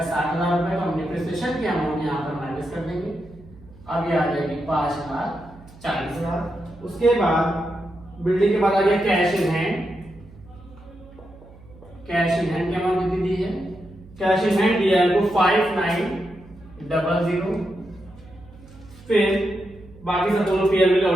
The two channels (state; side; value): noise; right; hum, 22 dB below the sound